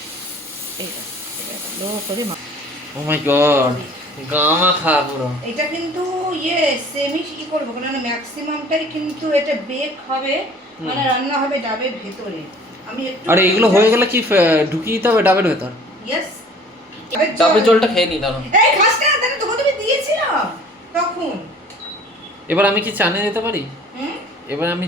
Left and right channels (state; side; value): normal; both; correlation 0.50